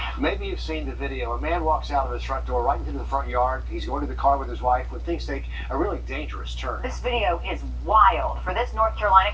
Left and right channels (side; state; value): both; identical; correlation 1.00